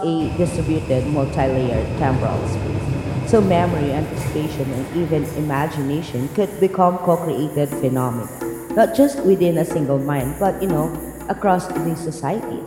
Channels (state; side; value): identical; both; correlation 1.00